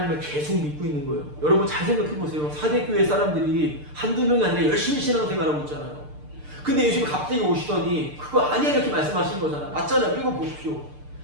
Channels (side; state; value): left; late; 6.7 ms